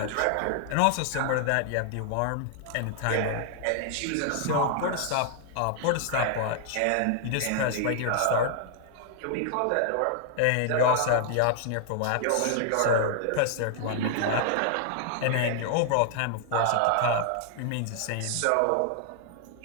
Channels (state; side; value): different; both; correlation 0.00